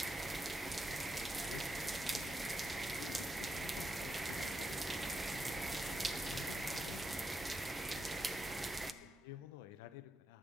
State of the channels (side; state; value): both; normal; correlation 0.86